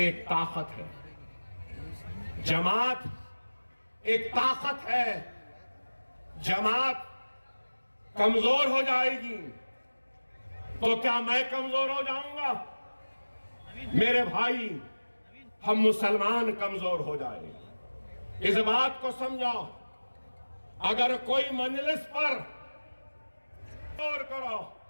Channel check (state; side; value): inverted; both; correlation -1.00